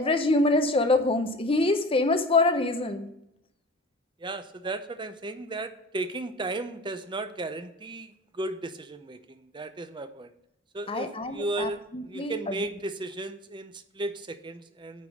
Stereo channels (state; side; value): normal; both; correlation 0.38